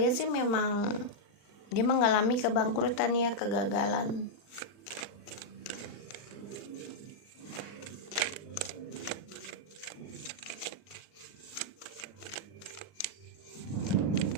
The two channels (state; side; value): late; right; 39 ms